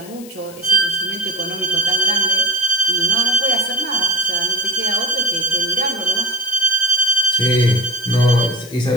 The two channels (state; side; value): noise; left; hiss, 19 dB below the sound